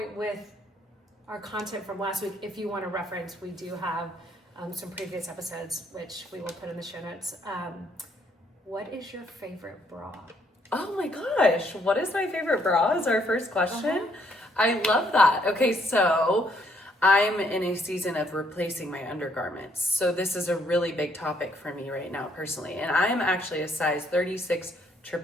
with our content from last week. If you want to reference, we do have some previous episodes, which we will put in the show notes. What is your favorite bra? Oh my gosh, what is my favorite bra is our first question. I love that. Okay, so I'm in a season of replacing my undergarments. So this is a really big topic for me right now personally. And I am actually a size 36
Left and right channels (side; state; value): both; normal; correlation 0.69